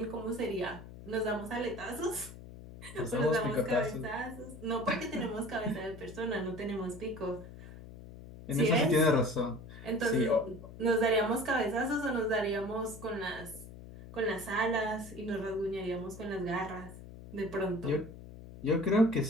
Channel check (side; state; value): left; noise; hum, 15 dB below the sound